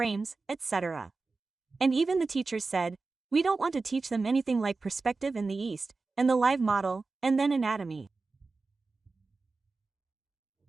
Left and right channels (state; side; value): quieter; left; 3.9 dB